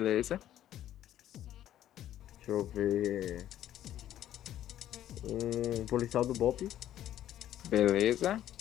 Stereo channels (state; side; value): quieter; right; 12.0 dB